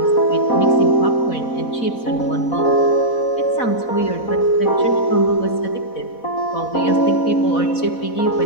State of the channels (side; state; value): right; late; 4.1 ms